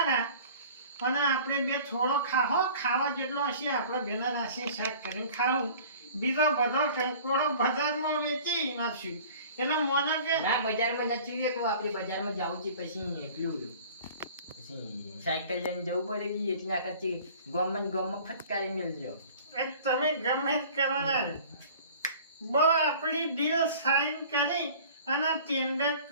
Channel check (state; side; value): inverted; both; correlation -0.46